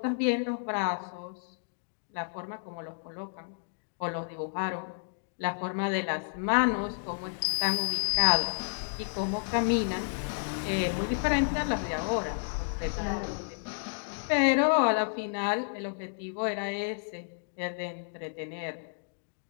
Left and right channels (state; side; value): silent; right; digital silence